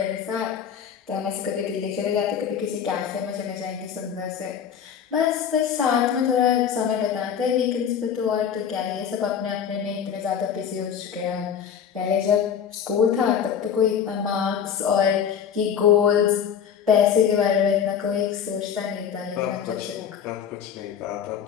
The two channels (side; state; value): right; quieter; 8.1 dB